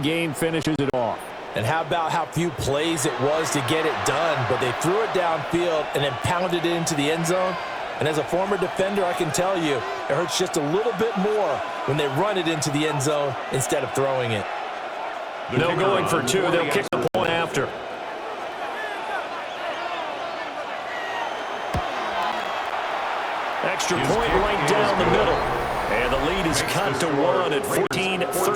game finishes it off. And how about how few plays it was to get it done, but they threw it downfield and then pounded it into the end zone. And as a former defender, I can tell you, it hurts just a little bit more when they run it into the end zone instead of throwing it. No going for 2. They'll kick the point after. Extra point right down the middle. And the lead is cut to 1 at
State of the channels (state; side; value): identical; both; correlation 1.00